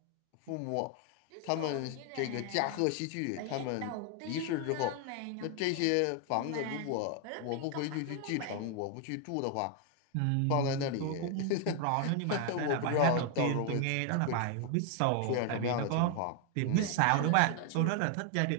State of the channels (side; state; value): both; different; correlation 0.00